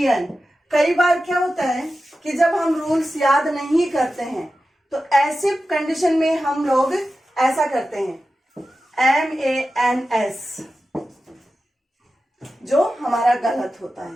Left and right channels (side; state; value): both; normal; correlation 0.93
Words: कई बार क्या होता है कि जब हम रूल्स याद नहीं करते हैं तो ऐसे कंडीशन में हम लोग ऐसा करते हैं MANS, जो हमारा गलत होता